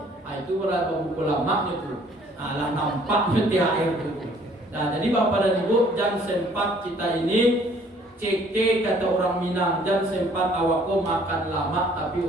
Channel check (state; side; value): normal; both; correlation 0.59